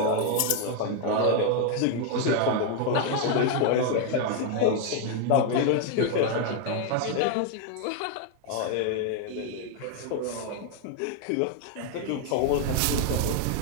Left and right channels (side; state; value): both; different; correlation 0.01